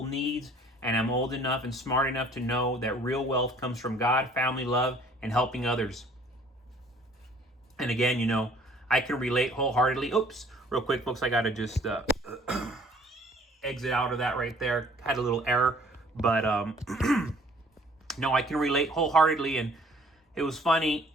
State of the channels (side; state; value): both; normal; correlation 0.56